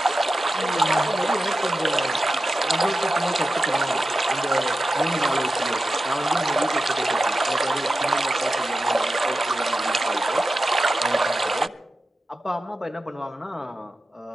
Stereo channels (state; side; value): normal; both; correlation 0.92